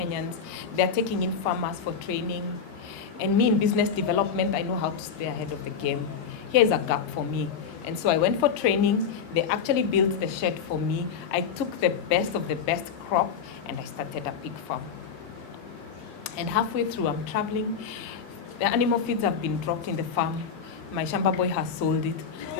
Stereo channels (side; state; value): right; quieter; 6.6 dB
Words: They're taking in farmers for training. And me in business development, I know how to stay ahead of the game. Here's a gap for me. And so I went for training. They actually built the shed for me. I took the best of the best crop and I started a pig farm. And halfway through, I'm traveling. The animal feeds have been dropped in the farm. My Shamba boy has sold it.